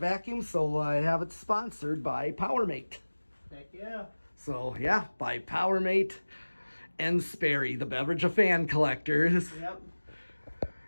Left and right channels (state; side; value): inverted; both; correlation -1.00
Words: so I have it sponsored by Powermate. Heck yeah. So yeah, by Powermate and Sperry, the beverage of fan collectors. Yep.